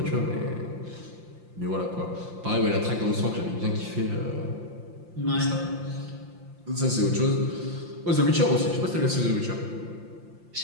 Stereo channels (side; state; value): left; late; 5.8 ms